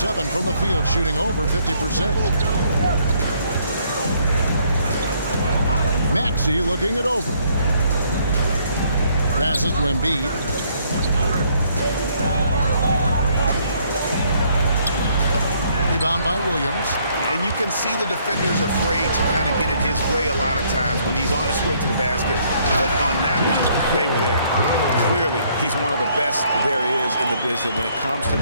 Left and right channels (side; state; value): both; inverted; correlation -0.66